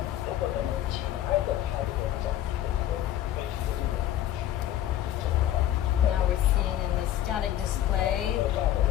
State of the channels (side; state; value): right; quieter; 12.3 dB